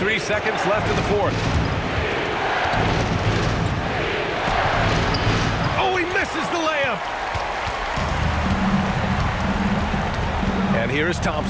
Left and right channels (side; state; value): both; identical; correlation 1.00